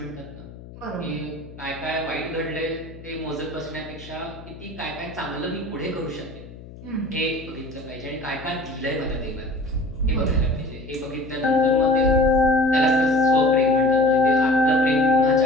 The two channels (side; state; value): left; noise; hum, 17 dB below the sound